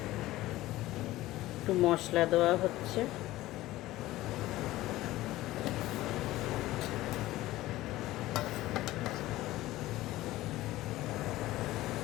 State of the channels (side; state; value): right; quieter; 16.7 dB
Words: একটু মশলা দেওয়া হচ্ছে।